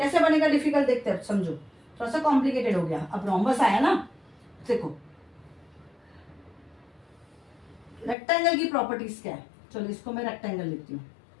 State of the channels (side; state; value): right; drops out; at 8.2 s